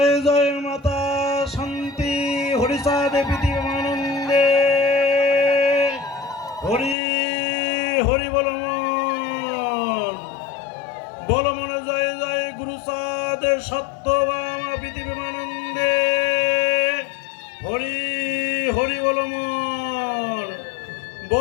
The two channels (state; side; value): drops out; right; at 7.0 s